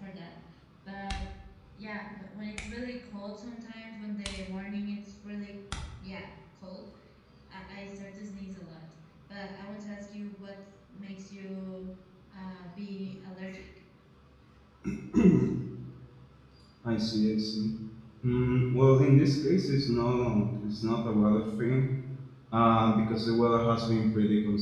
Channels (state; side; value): identical; both; correlation 1.00